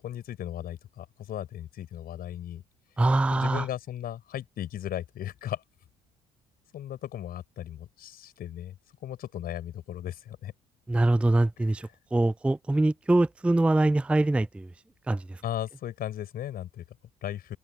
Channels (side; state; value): both; normal; correlation 0.90